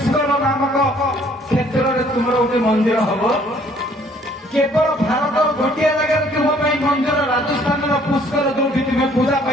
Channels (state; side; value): normal; both; correlation 0.60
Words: नामक क्षेत्र में तुम गोटे मंदिर हम केवल भारत गोटे जगह तुम मंदिर राजस्थान पुष्कर जो तुम्हें पूजा